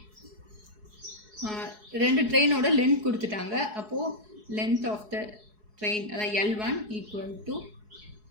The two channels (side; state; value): left; late; 4.7 ms